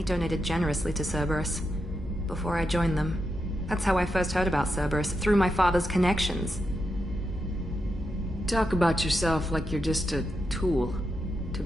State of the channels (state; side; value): normal; both; correlation 0.85